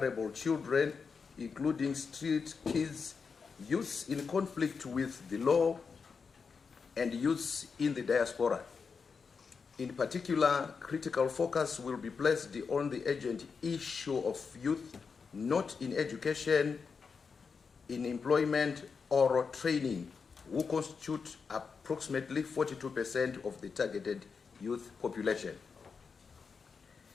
children, including street kids, youths in conflict with the law, and youths in the diaspora. In particular, critical focus will be placed on the urgent issue of youth not in education, in employment or training, who constitute approximately 42% of the targeted youth population.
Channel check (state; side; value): quieter; right; 5.4 dB